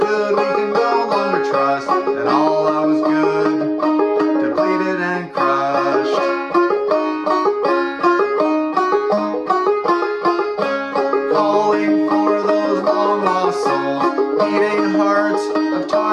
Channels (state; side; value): identical; both; correlation 1.00